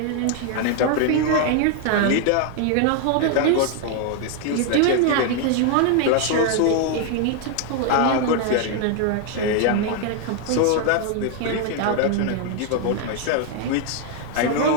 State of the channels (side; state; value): both; different; correlation 0.00